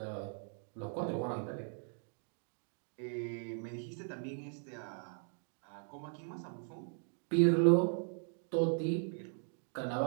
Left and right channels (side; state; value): left; silent; 52 dB below the other